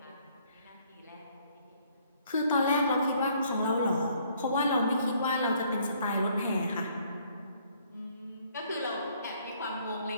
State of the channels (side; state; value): both; inverted; correlation -0.64